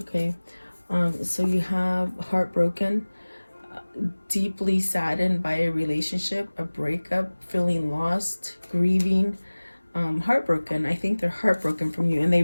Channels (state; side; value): inverted; both; correlation -1.00